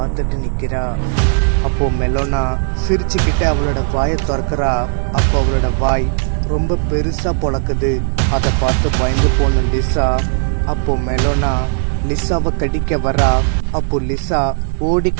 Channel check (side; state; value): left; silent; 63 dB below the other